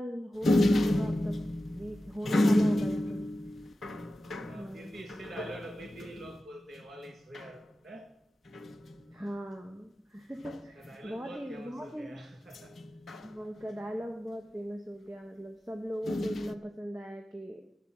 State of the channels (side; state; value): both; normal; correlation 0.93